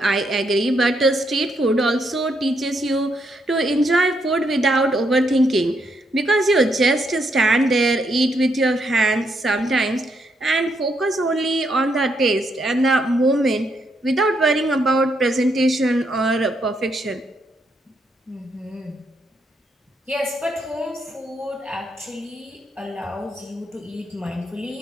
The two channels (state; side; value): normal; both; correlation 0.77